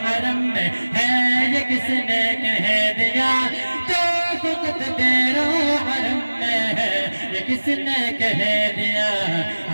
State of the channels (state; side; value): inverted; both; correlation -1.00